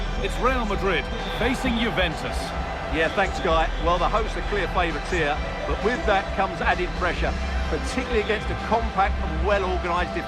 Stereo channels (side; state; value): both; identical; correlation 1.00